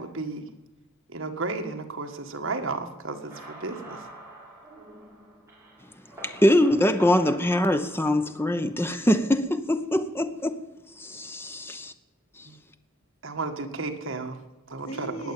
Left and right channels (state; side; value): normal; both; correlation 0.74